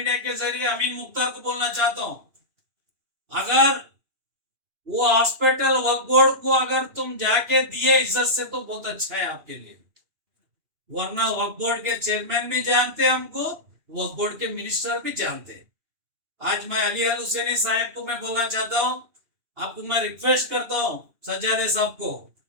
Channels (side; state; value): left; late; 2.9 ms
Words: के जरिए अमीन मुख्तार को बोलना चाहता हूं, अगर वो हॉस्पिटल वक्फ बोर्ड को अगर तुम जाके दिए इज्जत से तो बहुत अच्छा है आपके लिए, वरना वक्फ बोर्ड के चेयरमैन भी जानते हैं हमको, वक्फ बोर्ड के मिनिस्टर भी जानते हैं। आज मैं अली अल हुसैनी साहब को मैं बोलना चाहता हूं, आपको मैं रिक्वेस्ट करता हूं सज्जादे साहब को,